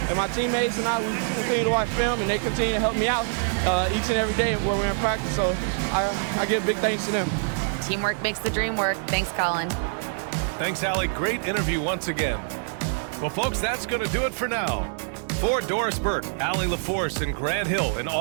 and my teammates and I, we continue to watch film, and they continue to help me out each and every day when we're in practice, so I give big thanks to them. Teamwork makes the dream work. Thanks, Colin. Thanks, Allie. Great interview once again. Well, folks, that's going to do it for now. For Doris Burke, Allie LaForce, and Grant Hill, and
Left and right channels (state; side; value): silent; left; digital silence